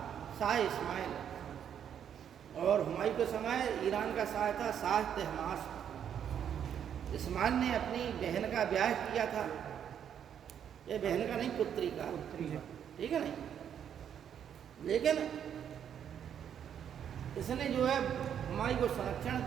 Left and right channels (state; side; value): quieter; left; 8.9 dB